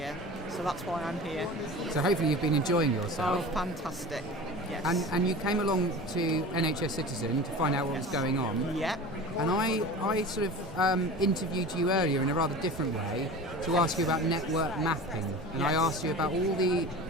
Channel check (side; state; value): both; normal; correlation 0.35